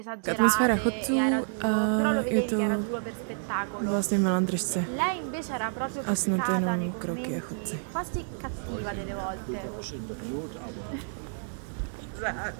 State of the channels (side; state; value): left; silent; digital silence